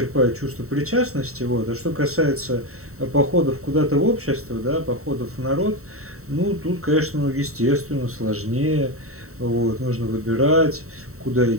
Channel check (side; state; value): left; late; 0.64 ms